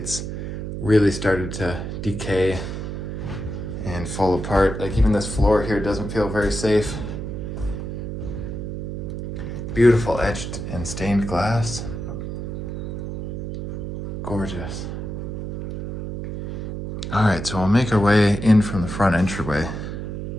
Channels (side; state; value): right; noise; hum, 6 dB below the sound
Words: really started to decay and fall apart. Like even this floor here doesn't feel very safe. Beautiful etched and stained glass. Gorgeous. All right, so we'll make our way in from the front entryway.